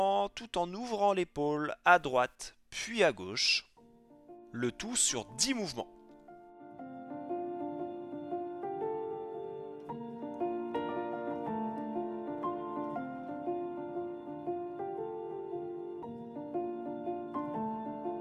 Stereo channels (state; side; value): identical; both; correlation 1.00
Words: tout en ouvrant l'épaule à droite, puis à gauche. Le tout sur 10 mouvements.